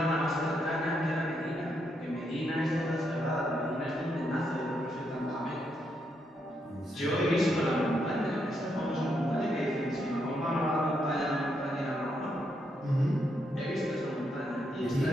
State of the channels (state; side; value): normal; both; correlation 0.79